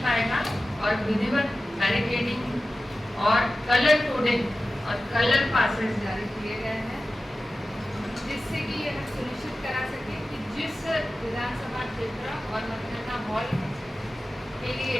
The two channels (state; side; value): normal; both; correlation 0.95